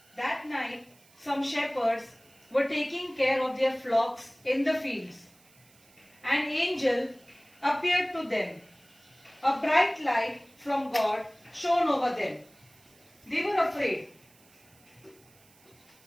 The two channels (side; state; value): right; noise; hiss, 28 dB below the sound